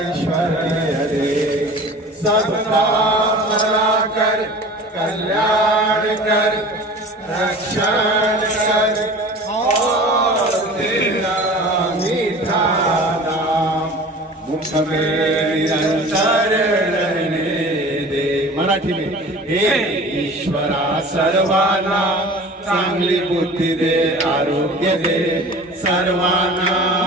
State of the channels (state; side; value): normal; both; correlation 0.40